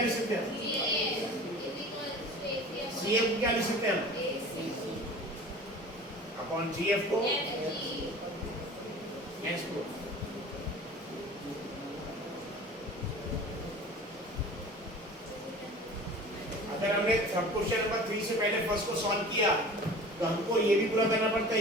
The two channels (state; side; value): normal; both; correlation 0.40